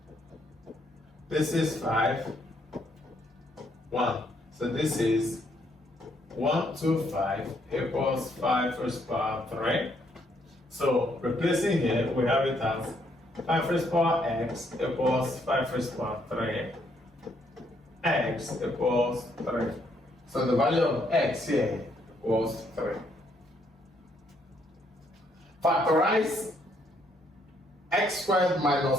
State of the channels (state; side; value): normal; both; correlation 0.71